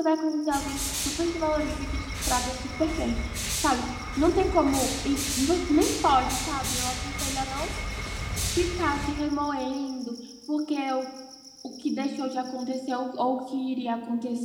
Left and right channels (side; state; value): both; identical; correlation 1.00